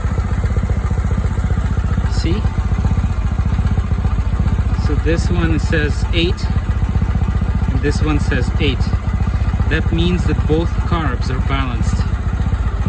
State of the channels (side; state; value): both; identical; correlation 1.00